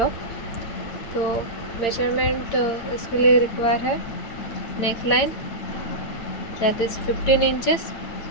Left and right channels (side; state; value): right; late; 8.9 ms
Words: तो मेजरमेंट इसके लिए रिक्वायर है neck line that is 15 inches,